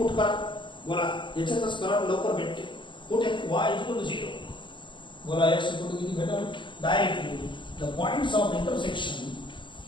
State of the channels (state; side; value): late; right; 0.23 ms